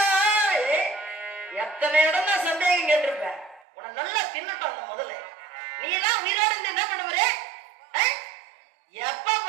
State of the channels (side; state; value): left; drops out; at 3.7 s